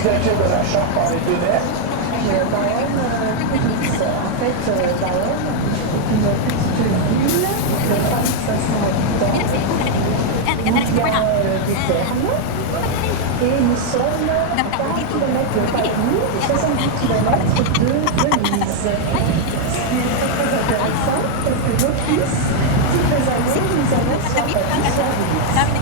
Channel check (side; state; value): both; different; correlation 0.00